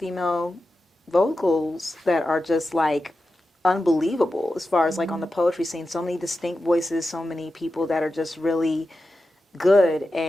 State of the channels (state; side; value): normal; both; correlation 0.91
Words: vocals that are just like unbelievable as far as like on the poetry scene. So many distinct voices, so many people that are just really good